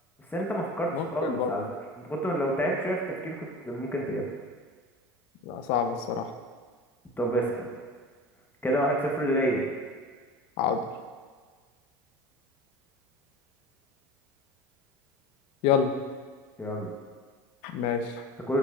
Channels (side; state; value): both; normal; correlation 0.34